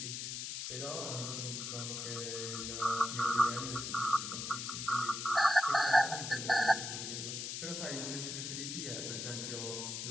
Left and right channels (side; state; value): left; noise; hiss, 5 dB below the sound